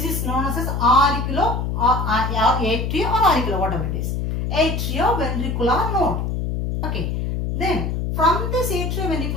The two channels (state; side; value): noise; left; hum, 1 dB below the sound